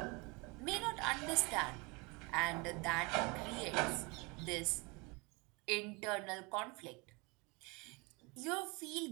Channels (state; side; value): quieter; left; 27.9 dB